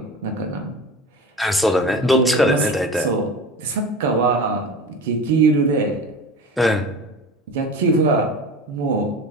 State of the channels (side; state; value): both; normal; correlation 0.33